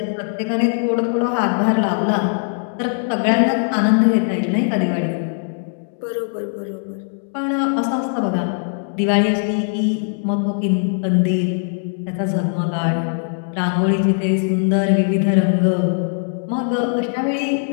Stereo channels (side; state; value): right; silent; 66 dB below the other